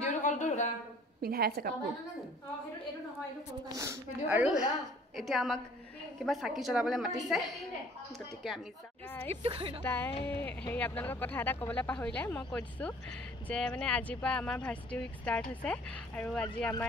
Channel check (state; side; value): normal; both; correlation 0.54